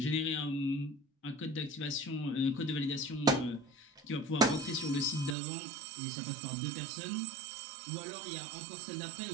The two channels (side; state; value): left; drops out; at 5.4 s